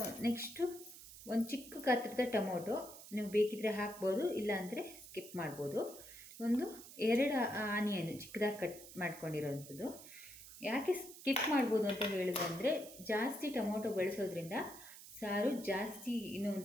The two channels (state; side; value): noise; right; hiss, 16 dB below the sound